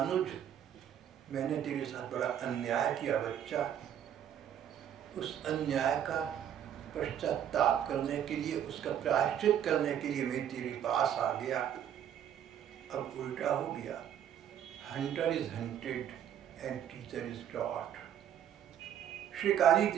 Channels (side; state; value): left; quieter; 9.8 dB